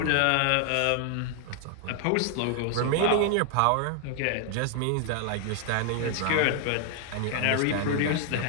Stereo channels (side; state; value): both; different; correlation 0.00